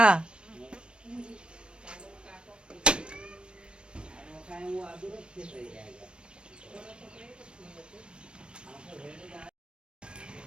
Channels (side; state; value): left; late; 0.055 ms